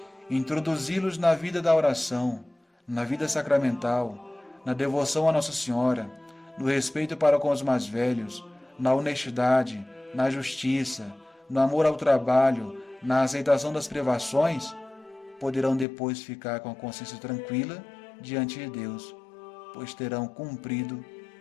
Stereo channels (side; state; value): right; drops out; at 15.9 s